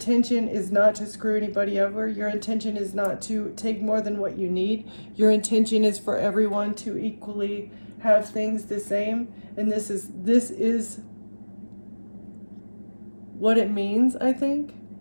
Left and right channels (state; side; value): inverted; both; correlation -1.00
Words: is not to screw anybody over. Your intention is not to take more than what you need. Your intention is for everyone to equally have things the same. And this is what it means, I think,